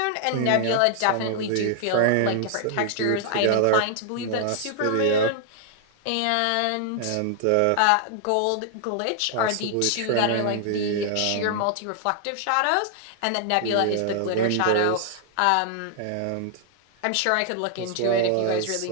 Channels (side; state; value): both; different; correlation 0.00